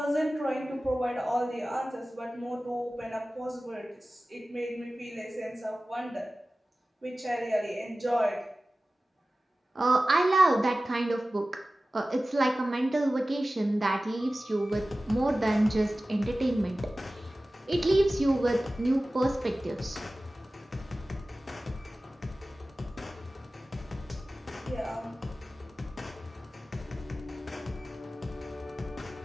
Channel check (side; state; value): both; normal; correlation 0.96